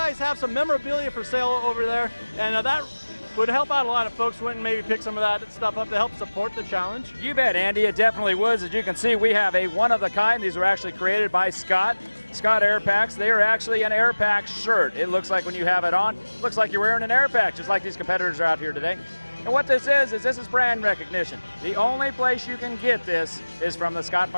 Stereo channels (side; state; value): both; inverted; correlation -1.00